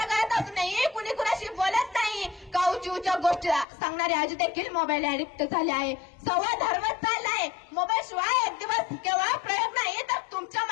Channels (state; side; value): drops out; right; at 3.7 s